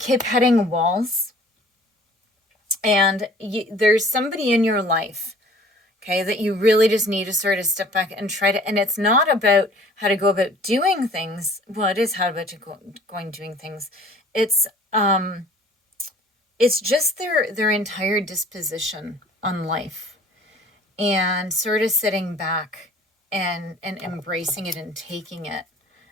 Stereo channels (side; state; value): both; normal; correlation 0.50